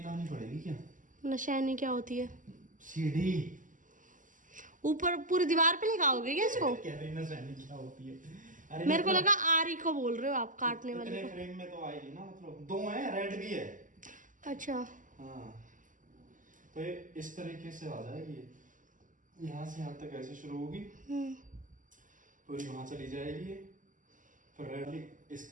लानी पड़ेगी क्या? निशानी क्या होती है? सीढ़ी ऊपर पूरी दीवार पे लगाओगे क्या इसको? कह रही निशानी क्या होती है? अरे मेरे को लगा आरी को बोल रहे हो आप, काटने वाले इतने को। फ्रेम में तो आएगी ना, मतलब 2 है, रेड भी है। अच्छा हाँ, तो ये इस तरीके से आ जाएगी, यहाँ से यहाँ तक ऐसे शुरू होगी, पूरी वहाँ चली जाएगी, फिर रेड इस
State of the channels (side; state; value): left; late; 0.38 ms